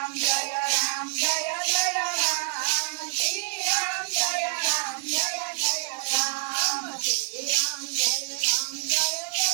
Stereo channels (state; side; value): silent; left; digital silence